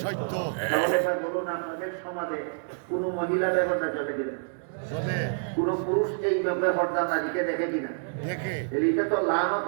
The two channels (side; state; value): left; silent; digital silence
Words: সত্য। তাহলে এবার বলুন, আপনাদের সমাজে কোন মহিলা বেপরদা চলে কিনা? চলে। কোন পুরুষ এই বেপরদা নারীকে দেখে কিনা? দেখে। এটা তো